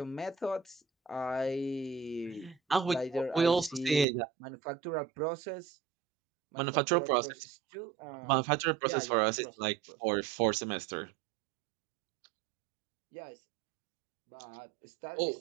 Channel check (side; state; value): left; drops out; at 4.0 s